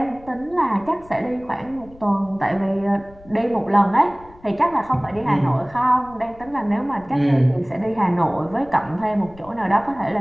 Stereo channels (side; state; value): left; noise; rumble, 23 dB below the sound